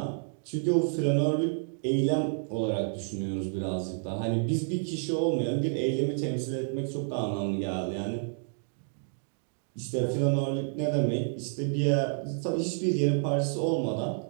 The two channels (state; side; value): silent; left; digital silence